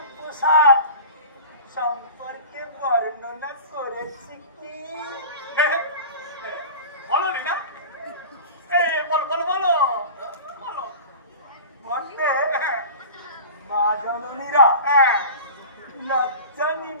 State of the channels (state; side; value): inverted; both; correlation -0.35